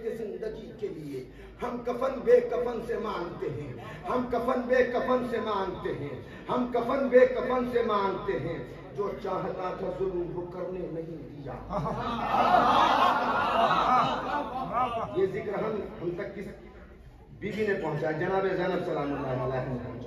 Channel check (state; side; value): identical; both; correlation 1.00